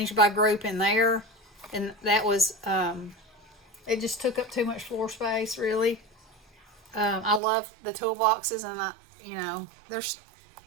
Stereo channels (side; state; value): left; drops out; at 7.4 s